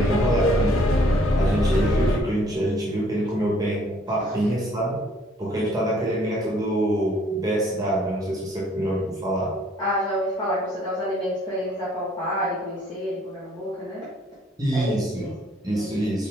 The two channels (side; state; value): both; normal; correlation 0.61